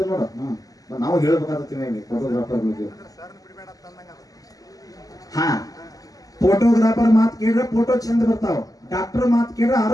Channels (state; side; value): late; right; 0.17 ms